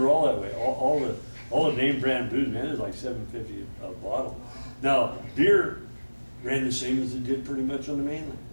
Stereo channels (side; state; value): both; inverted; correlation -1.00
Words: all that way. All the name brand booze, man, is like $7.50 a bottle. Now beer ran the same as it did pretty much on the mainland,